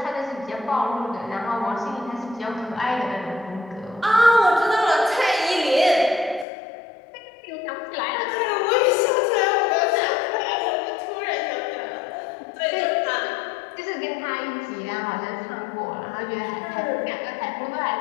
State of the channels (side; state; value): right; drops out; at 6.5 s